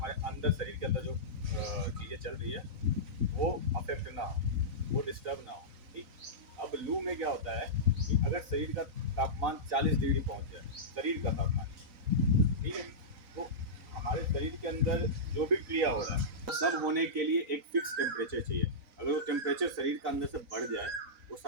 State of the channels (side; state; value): left; late; 3.9 ms